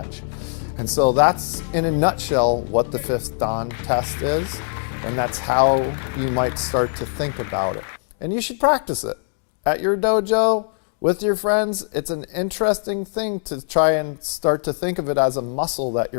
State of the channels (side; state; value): right; silent; digital silence